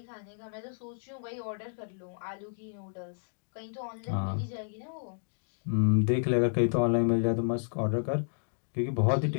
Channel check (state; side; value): silent; right; digital silence